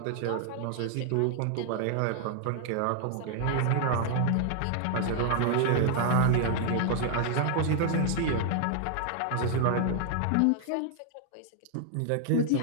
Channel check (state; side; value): different; both; correlation 0.00